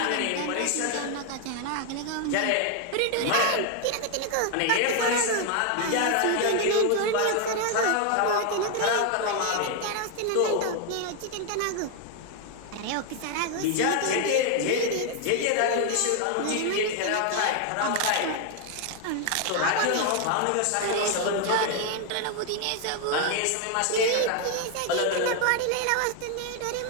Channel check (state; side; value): different; both; correlation 0.01